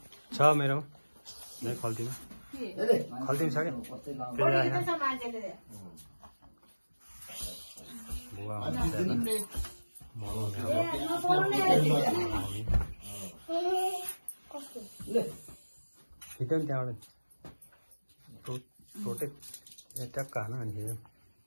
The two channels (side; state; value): both; inverted; correlation -1.00